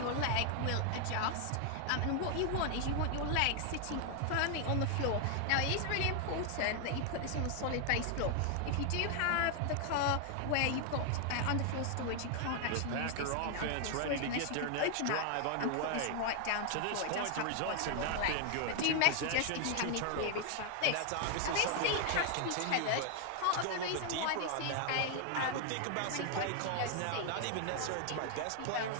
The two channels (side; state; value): both; different; correlation 0.00